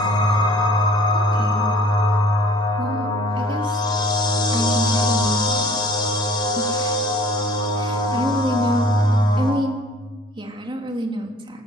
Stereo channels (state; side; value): normal; both; correlation 0.52